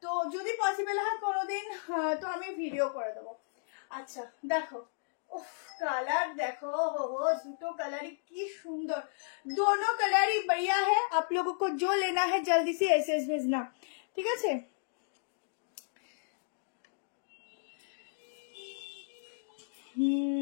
তো যদি পসিবল হয় কোনোদিন তো আমি ভিডিও করে দেবো। আচ্ছা দেখো, उफ कलर देखो, हो दुटो कलर ही की सुंदर, दोनों कलर ही बढ़िया है। आप लोगों को जो लेना है जल्दी से एसएस भेजना, ठीक है।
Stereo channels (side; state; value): right; silent; digital silence